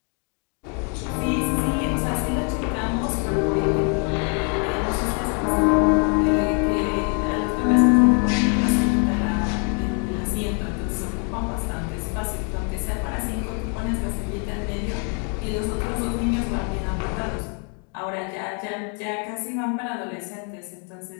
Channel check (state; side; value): quieter; right; 39.2 dB